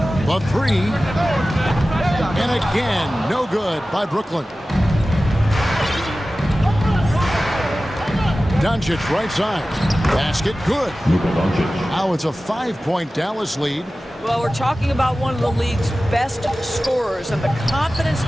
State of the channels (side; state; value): both; normal; correlation 0.96